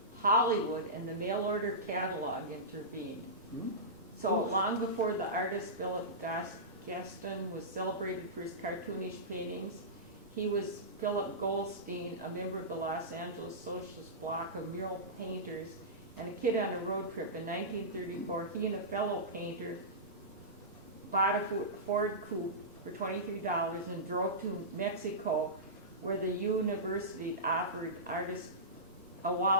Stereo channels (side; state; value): both; normal; correlation -0.18